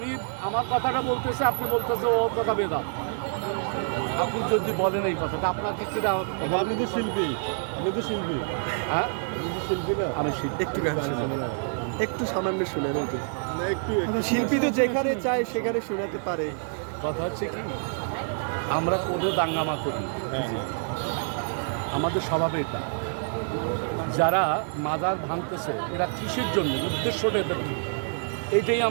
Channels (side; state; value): left; silent; digital silence